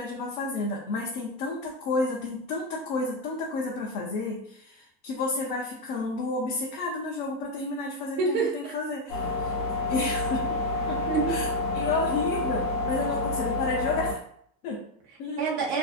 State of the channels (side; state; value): both; normal; correlation 0.03